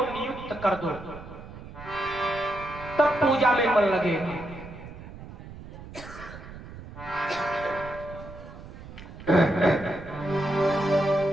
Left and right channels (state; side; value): noise; right; rumble, 14 dB below the sound